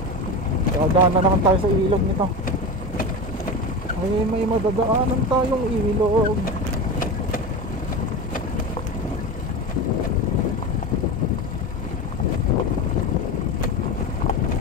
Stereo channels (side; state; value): both; normal; correlation 0.24